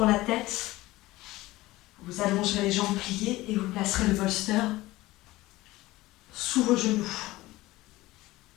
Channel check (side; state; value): right; quieter; 18.4 dB